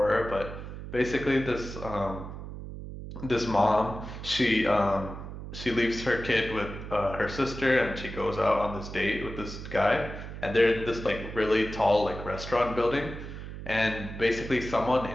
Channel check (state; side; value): noise; right; hum, 10 dB below the sound